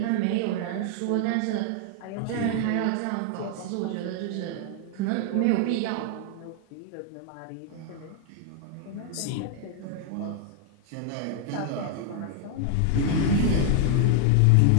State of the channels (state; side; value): different; both; correlation 0.00